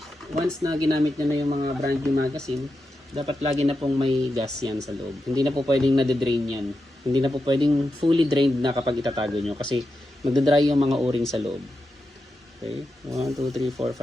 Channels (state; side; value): normal; both; correlation 0.88